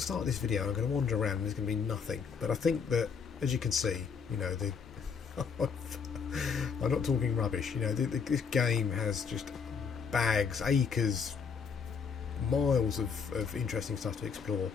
start this video, I'm going to wander around and there's going to be nothing. But I think that, as you can see, you know, I'm not talking rubbish. You know, this game has just bags, acres, miles of interesting stuff to explore.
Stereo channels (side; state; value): right; quieter; 6.1 dB